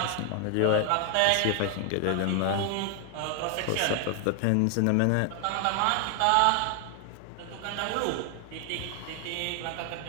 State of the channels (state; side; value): different; both; correlation 0.00